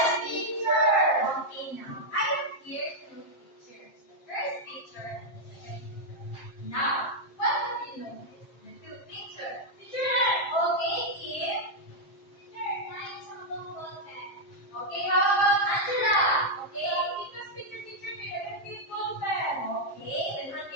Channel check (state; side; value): late; right; 7.5 ms